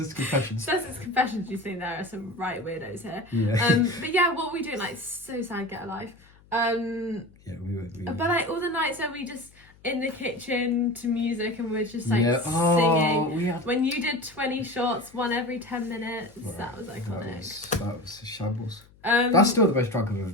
Confessions. Sussex Confessions. You think there are some right weirdos here. Yeah. But yeah, what were we doing? Like so sad. Get a life. Yeah, we were. But like all the nights where we just in the kitchen to music and we're just like Yeah. singing. We had. When you did 20 shots, one every 10 minutes, that was iconic. That was a shambles. That's still the most drunk I've ever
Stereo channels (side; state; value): left; noise; hum, 27 dB below the sound